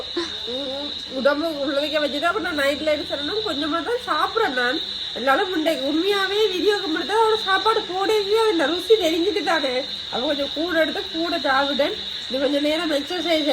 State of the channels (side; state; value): both; identical; correlation 1.00